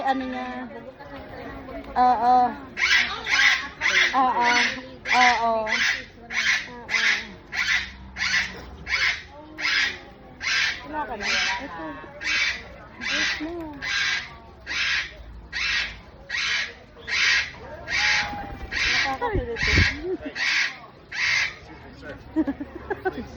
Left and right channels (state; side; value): identical; both; correlation 1.00